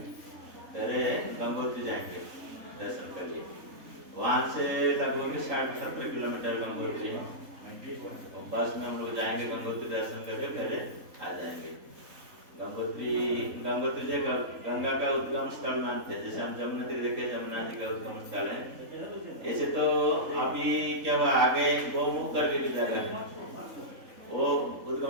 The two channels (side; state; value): left; late; 3.8 ms